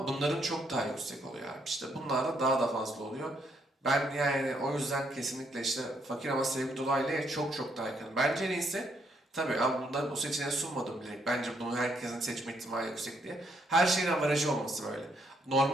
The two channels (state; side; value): normal; both; correlation 0.73